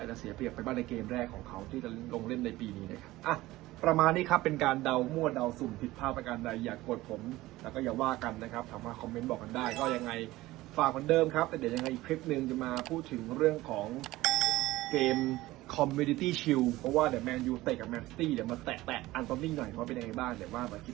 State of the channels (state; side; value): quieter; left; 17.8 dB